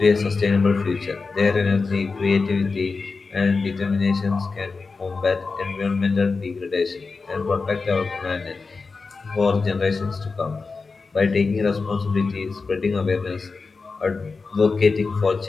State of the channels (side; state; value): right; quieter; 4.3 dB